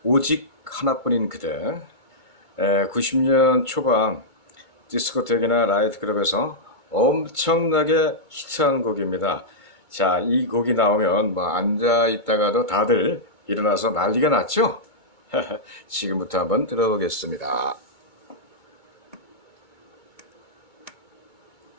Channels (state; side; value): late; right; 2.2 ms